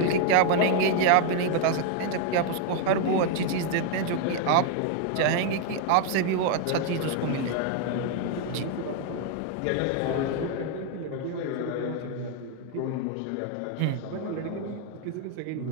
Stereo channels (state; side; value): different; both; correlation 0.00